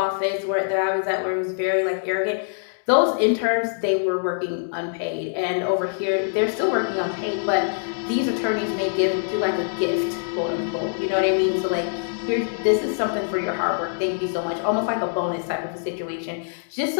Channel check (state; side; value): silent; right; digital silence